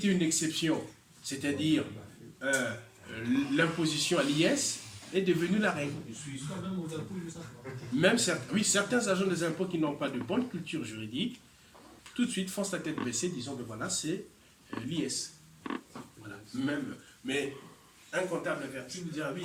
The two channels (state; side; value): identical; both; correlation 1.00